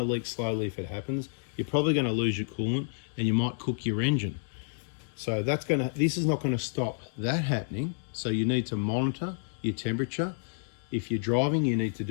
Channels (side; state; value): right; silent; digital silence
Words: leak slowly if it happens. You're probably going to lose your coolant, and you might cook your engine. So this is not going to stop that happening. So you need to monitor your temperature. If you're driving, you need to